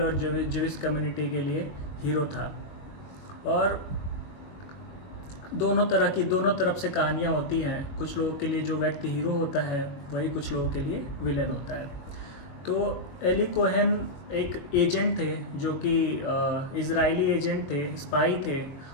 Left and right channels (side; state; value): right; late; 21 ms